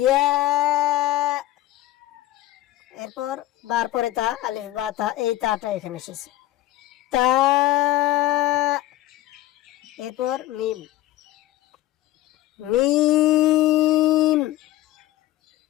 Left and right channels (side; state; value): right; quieter; 15.2 dB